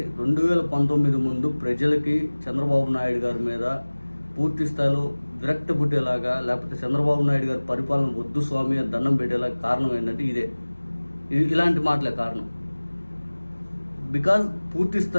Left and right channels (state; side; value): inverted; both; correlation -1.00